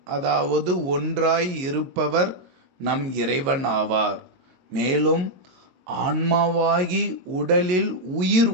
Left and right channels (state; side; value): late; left; 22 ms